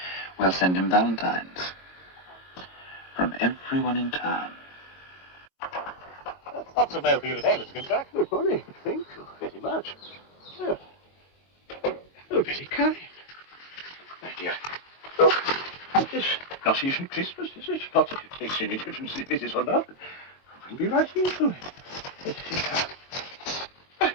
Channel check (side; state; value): right; late; 22 ms